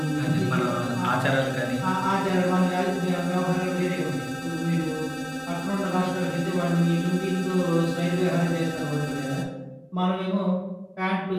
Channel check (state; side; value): identical; both; correlation 1.00